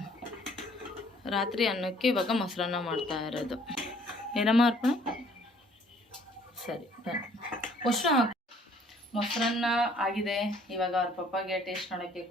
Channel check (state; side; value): normal; both; correlation 0.59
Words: ರಾತ್ರಿ ಅನ್ನಕ್ಕೆ ಇವಾಗ ಮೊಸರನ್ನ ಮಾಡ್ತಾ ಇರೋದು. ಏನಮ್ಮ ಅರ್ಪಣೆ? ಸರಿ, ಅಷ್ಟು ಹಾಕಿ. ಮೊಸರನ್ನ ಆಗಿದೆ. ಇವಾಗ ಅವ್ರ ಪಪ್ಪಾಗೆ ಟೇಸ್ಟ್ ನೋಡೋಕ್ಕೆ